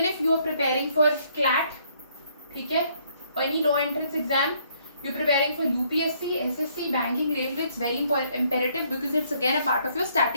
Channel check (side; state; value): both; inverted; correlation -0.67